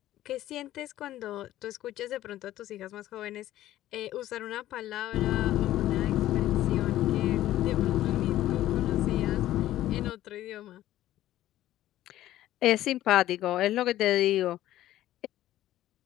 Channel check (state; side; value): quieter; right; 14.0 dB